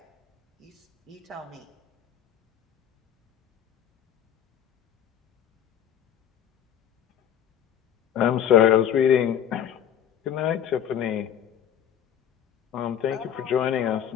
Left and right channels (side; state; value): right; quieter; 9.5 dB